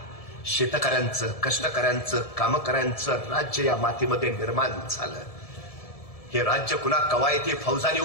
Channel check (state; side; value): late; right; 1.7 ms